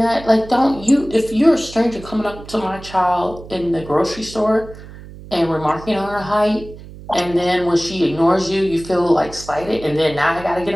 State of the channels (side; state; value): right; noise; hum, 16 dB below the sound